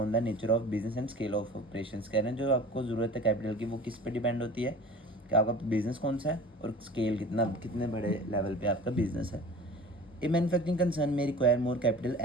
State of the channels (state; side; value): normal; both; correlation 0.41